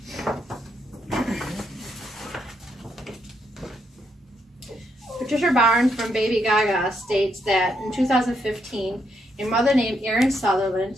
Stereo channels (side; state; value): both; normal; correlation 0.78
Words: Patricia Barnes from Baby Gaga states that in 2015, a mother named Erin Sutherland